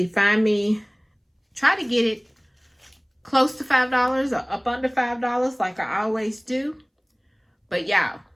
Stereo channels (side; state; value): both; identical; correlation 1.00